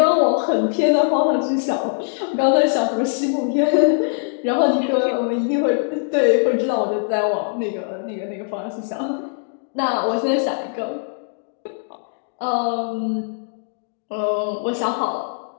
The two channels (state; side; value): silent; right; digital silence